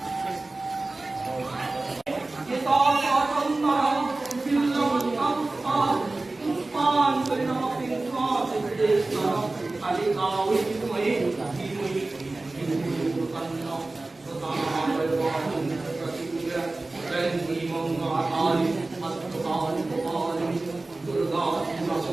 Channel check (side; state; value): left; quieter; 3.1 dB